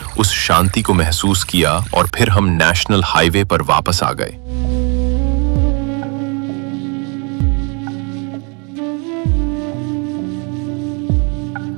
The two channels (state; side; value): quieter; left; 34.5 dB